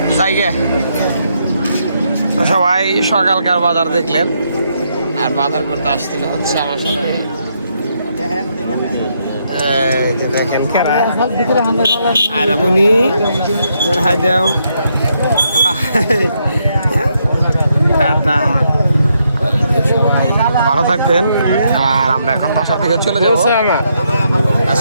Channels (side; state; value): both; inverted; correlation -0.77